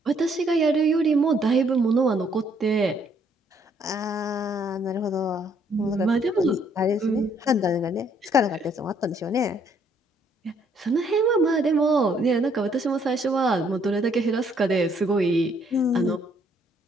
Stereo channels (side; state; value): both; normal; correlation 0.67